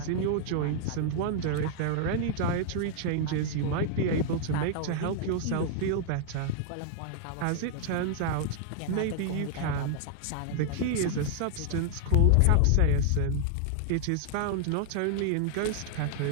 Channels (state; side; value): different; both; correlation 0.00